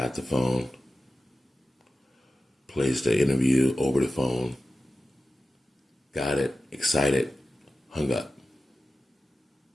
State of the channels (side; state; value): both; normal; correlation 0.94